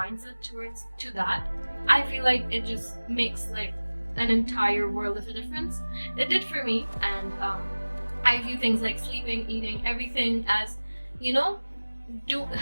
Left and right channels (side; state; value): both; inverted; correlation -1.00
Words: to that, I feel like it just makes like an entire world of a difference. It did for me. And I view things like sleeping, eating, everything as, you know,